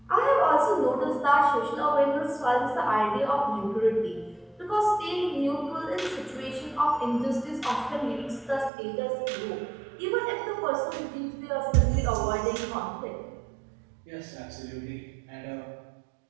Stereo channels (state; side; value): drops out; left; at 8.7 s